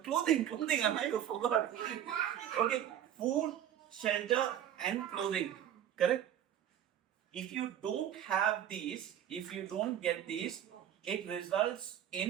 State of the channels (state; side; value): quieter; left; 10.5 dB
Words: I forgot. Okay, food, shelter, and clothing. Correct? If you don't have these, if you don't get these, it results